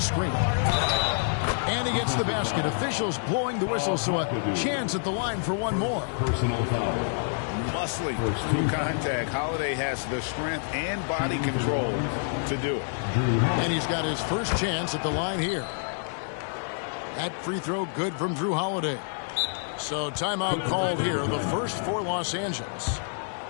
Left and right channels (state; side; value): silent; right; digital silence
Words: And he gets the basket. Officials blowing the whistle, so a chance at the line for one more. Personal foul. Muscling through contact. Holiday has the strength and body control to do it. And he's got his first chance at the line here. That free throw good from Drew Holiday. So timeout called here, the first for Los Angeles.